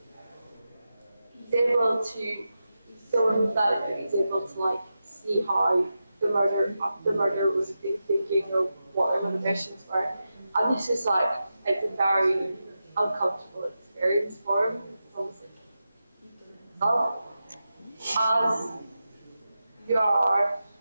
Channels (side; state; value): both; inverted; correlation -0.90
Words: able to, he's so empathetic that he's able to like see how the murder was thinking or what their motivations were. And this is like, it's a very uncomfortable experience for him. It's almost like as you are